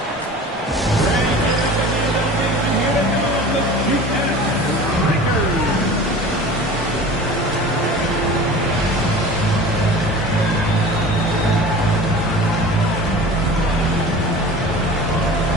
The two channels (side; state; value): both; normal; correlation 0.39